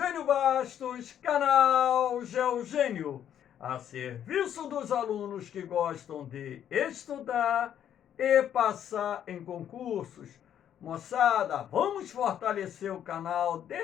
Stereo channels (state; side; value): quieter; right; 9.9 dB